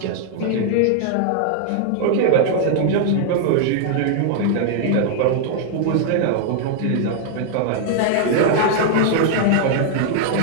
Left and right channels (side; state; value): both; different; correlation 0.00